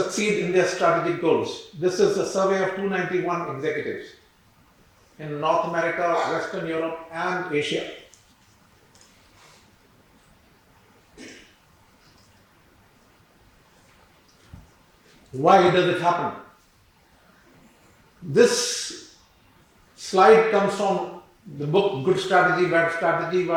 in their strategic goals. This is a survey of 291 executives in North America, Western Europe and Asia. Why does it happen? This slide comes from the book Good Strategy, Bad Strategy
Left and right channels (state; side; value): identical; both; correlation 1.00